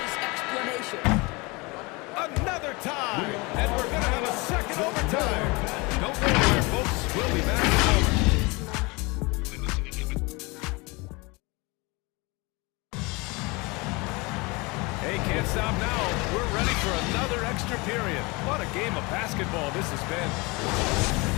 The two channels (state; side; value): quieter; right; 26.1 dB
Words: explanation. Another tie. And we're going to have a second overtime. Don't go anywhere, folks. We'll be back in a moment. Hey, can't stop now. We're ready for another extra period. What a game of basketball this has been.